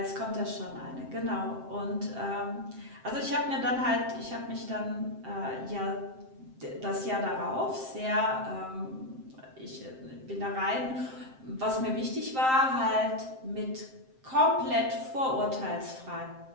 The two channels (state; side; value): late; left; 7.6 ms